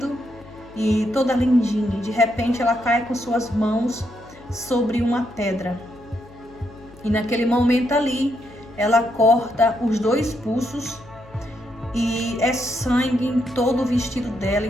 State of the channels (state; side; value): noise; left; hum, 23 dB below the sound